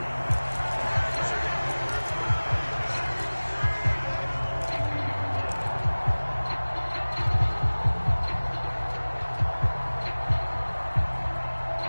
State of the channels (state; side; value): inverted; both; correlation -1.00